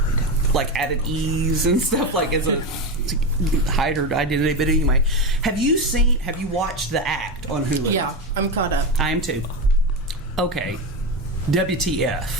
added E's and stuff as a to hide her identity. But anyway, have you watched The Act on Hulu? Yeah, I'm caught up. I am too. Okay,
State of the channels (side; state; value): both; normal; correlation 0.16